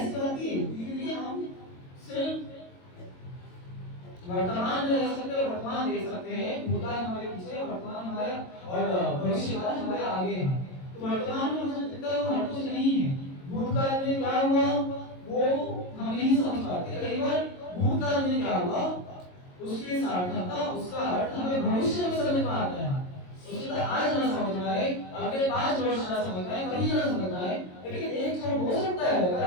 बात है, हम सिर्फ वर्तमान में रह सकते हैं, वर्तमान देख सकते हैं, भूतकाल हमारे पीछे, वर्तमान हमारा और भविष्यकाल हमारे आगे है। तो वर्तमान में हो सकता है हर कुछ नहीं है, भूतकाल में क्या हुआ वो हम नहीं समझ पाते। कई बार भूतकाल में क्या हुआ उसकी सार्थकता, उसका अर्थ हमें भविष्य में समझ में आता है। उसके बाद आज ना समझ में आए, अगले 5 वर्ष ना समझ में आए, कभी ना समझ में आए, लेकिन एक क्षण हो सकता है अगर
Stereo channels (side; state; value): right; late; 22 ms